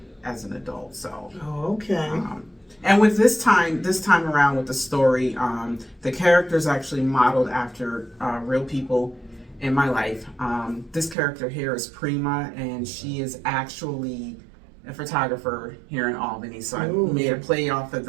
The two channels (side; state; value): left; drops out; at 11.2 s